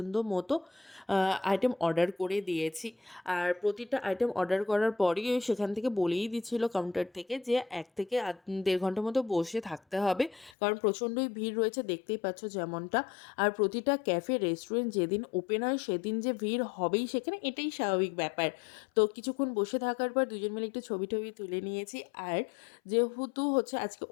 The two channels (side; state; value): right; drops out; at 10.6 s